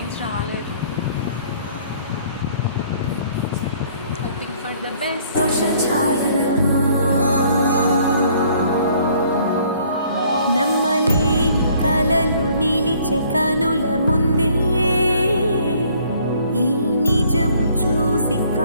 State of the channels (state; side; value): inverted; both; correlation -0.60